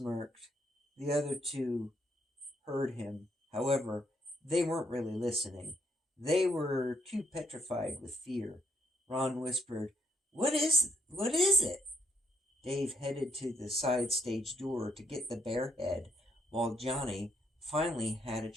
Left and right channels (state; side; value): normal; both; correlation 0.73